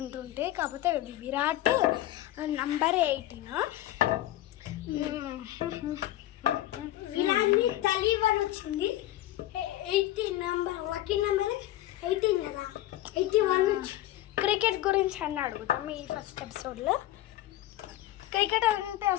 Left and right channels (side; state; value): right; quieter; 14.6 dB